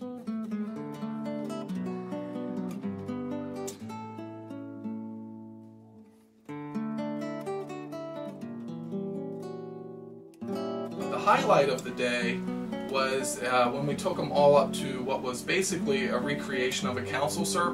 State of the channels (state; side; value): identical; both; correlation 1.00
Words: The highlight of the day was when we took them all up to what was basically a recreation of a council